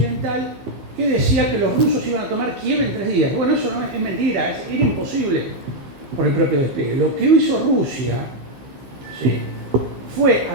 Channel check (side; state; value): left; late; 15 ms